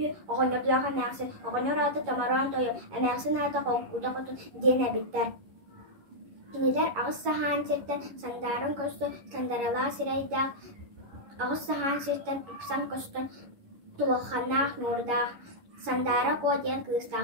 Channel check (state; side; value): late; left; 11 ms